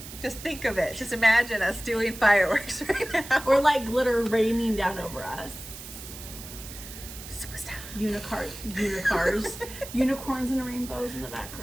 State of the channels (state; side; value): noise; right; hiss, 13 dB below the sound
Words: think of it. Just imagine us doing fireworks right now. Or like glitter raining down over us. Superstar. Unicorns. Unicorns and rainbows in the